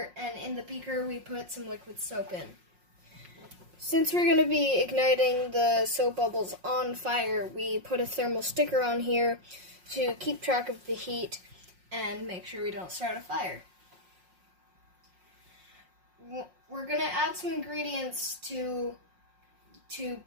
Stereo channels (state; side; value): late; left; 5.5 ms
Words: and in the beaker we put some liquid soap in. Since we're going to be igniting the soap bubbles on fire, we put a thermal sticker on here to keep track of the heat and make sure we don't start a fire. We're going to add some ingredients to